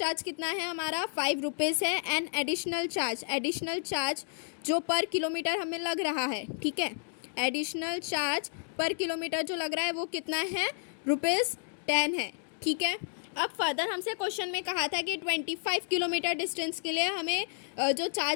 कितना है हमारा, ₹5 है। एंड एडिशनल चार्ज जो पर किलोमीटर हमें लग रहा है, ठीक है, एडिशनल चार्ज पर किलोमीटर जो लग रहा है वो कितना है, ₹10 है, ठीक है। अब फर्दर हमसे क्वेश्चन में कहा था कि 25 किलोमीटर डिस्टेंस के लिए हमें जो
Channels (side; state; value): right; silent; digital silence